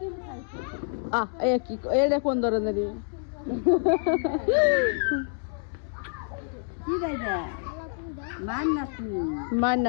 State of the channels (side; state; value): right; silent; 60 dB below the other